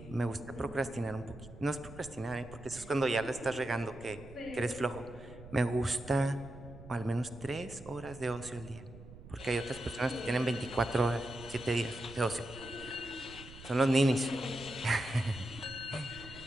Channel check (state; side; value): noise; right; rumble, 16 dB below the sound